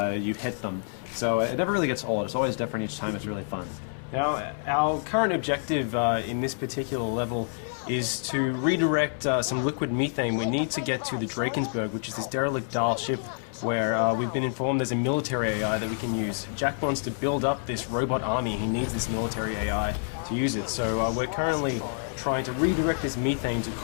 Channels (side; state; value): right; silent; 60 dB below the other